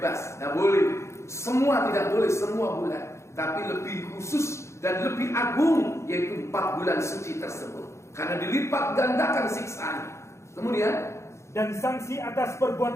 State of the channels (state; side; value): late; right; 0.14 ms